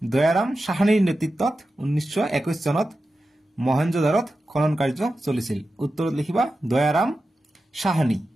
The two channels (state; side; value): normal; both; correlation 0.92